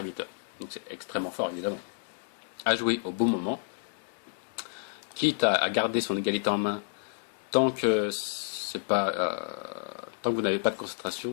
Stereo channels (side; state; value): right; silent; digital silence